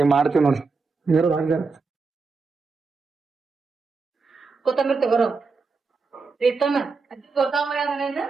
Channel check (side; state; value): left; quieter; 4.4 dB